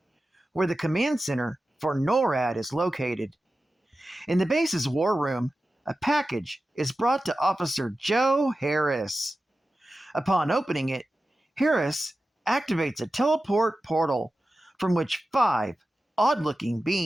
where the command center for NORAD is located. In the base's war room, a package is brought to Officer Joe Harris. Upon opening it, Harris activates a teleport portal from which 5 odd-looking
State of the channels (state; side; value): normal; both; correlation 0.94